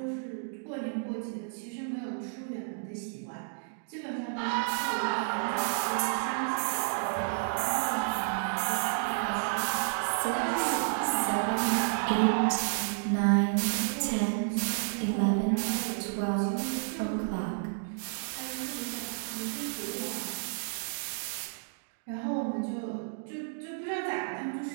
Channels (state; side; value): silent; left; digital silence